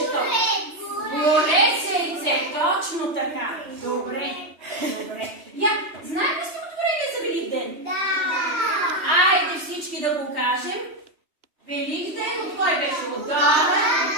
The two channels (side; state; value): left; late; 3.1 ms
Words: то? Горец яйце, точно така. Добре. Знаем ли стихотворение за Великден? Да. Айде всички да го кажем. Великден от кой беше? Отдолу.